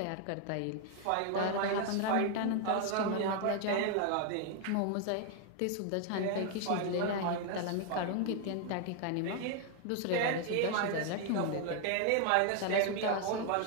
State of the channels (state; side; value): different; both; correlation 0.00